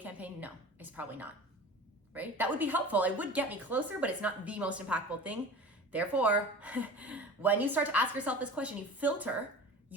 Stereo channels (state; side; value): normal; both; correlation 0.37